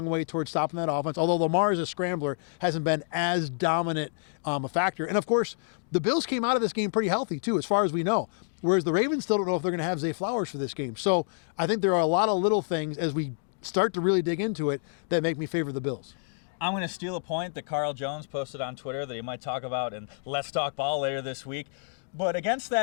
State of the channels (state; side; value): silent; right; digital silence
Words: way towards stopping that offense. Although Lamar as a scrambler hasn't been as dominant a factor. And, of course, the Bills came out of this game pretty healthy, too, as far as we know. Whereas the Ravens still don't know if they're going to have Zay Flowers for this game. So I think there are a lot of little things as we start to really dig into it that make me favor the Bills. I'm going to steal a point that Carl Jones posted on Twitter that he might talk about in Let's Talk Ball later this week. But against